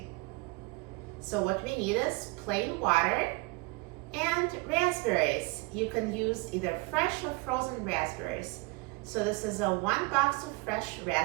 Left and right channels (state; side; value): quieter; left; 26.6 dB